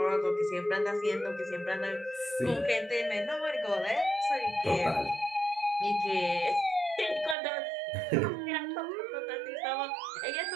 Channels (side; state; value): left; drops out; at 7.4 s